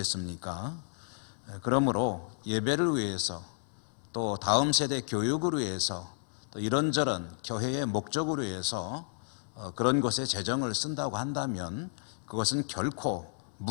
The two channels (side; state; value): right; silent; 56 dB below the other